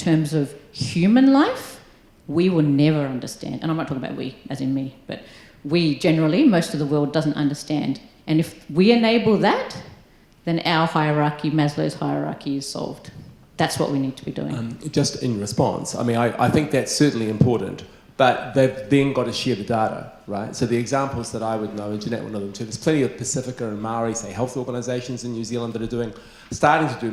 of human life, we will never understand. And I'm not talking about we, as in me, but we generally, most of the world doesn't understand. And if we enable that, then our hierarchy, Maslow's hierarchy, is solved. That's what we need to be doing. Just in response, I mean, I think that's certainly important, but they've then got to share the data, right? So the examples that I would know, and Jannat will know them too, there's plenty of Pacifica and Maori, say, health organisations in New Zealand that are starting to do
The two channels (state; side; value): identical; both; correlation 1.00